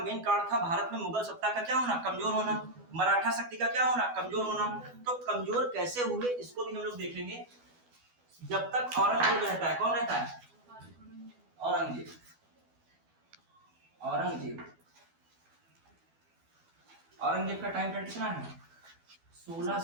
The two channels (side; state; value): left; late; 12 ms